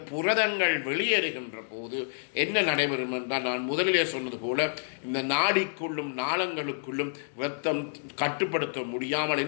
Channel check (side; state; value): right; silent; digital silence